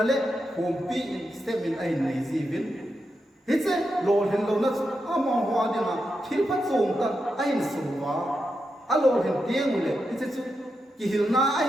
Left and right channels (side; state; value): both; normal; correlation 0.86